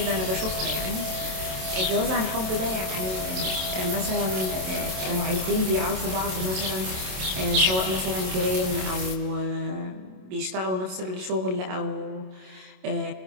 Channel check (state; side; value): late; left; 27 ms